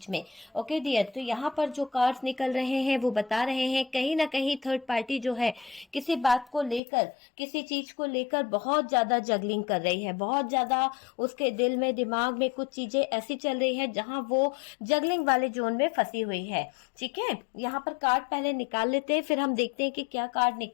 में। ओके डियर, तो यहाँ पर जो कार्ड्स निकल रहे हैं वो बता रहे हैं कहीं ना कहीं थर्ड पार्टी जो है किसी बात को लेकर, किसी चीज को लेकर बहुत ज्यादा जगलिंग कर रही है। बहुत ज्यादा उसके दिल में, दिमाग में कुछ चीजें ऐसी चल रही है जहां वो जगलिंग वाले जोन में फंसी हुई है। ठीक है, यहाँ पर कार्ड पहले निकाल लेते हैं, फिर हम देखते हैं कि क्या कार्ड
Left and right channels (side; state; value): right; drops out; at 6.8 s